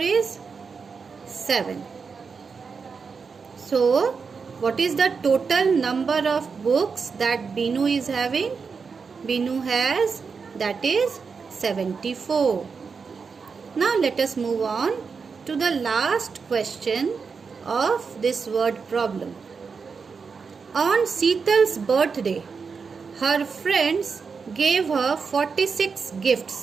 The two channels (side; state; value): left; quieter; 5.4 dB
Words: 7. So, what is the total number of books that Binu is having? Binu has, that is 74. Now, let us move on to the last question of this word problem. On Seetal's birthday, her friends gave her 46